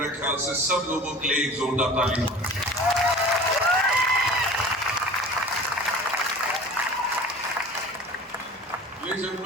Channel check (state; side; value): normal; both; correlation 0.41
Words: ख्याल से सब लोगों के लिए एक जोरदार ताली. लेडीज एंड